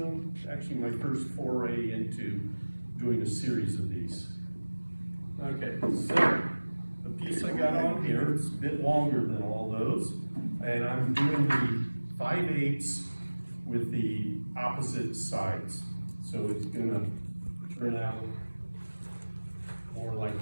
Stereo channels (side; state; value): both; inverted; correlation -1.00